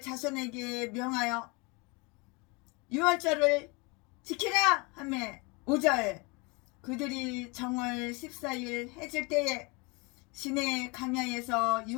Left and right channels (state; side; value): quieter; right; 28.4 dB